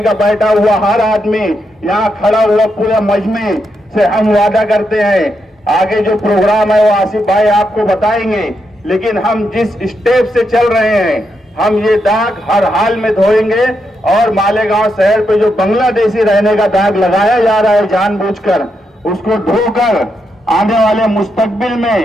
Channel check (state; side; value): normal; both; correlation 0.82